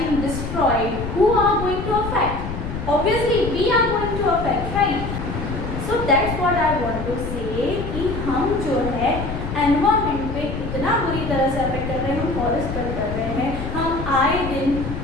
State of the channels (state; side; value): noise; left; rumble, 6 dB below the sound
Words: destroyed, who are going to affect? Obviously, we are going to affect, right? So that's what I want to say कि हम जो है environment पे इतना बुरी तरह से affect कर रहे हैं, हम फॉरेस्ट कट कर रहे हैं, हम आए दिन